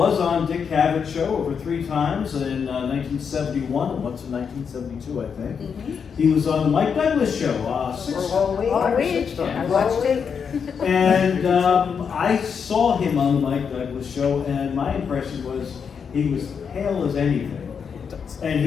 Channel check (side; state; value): right; quieter; 6.6 dB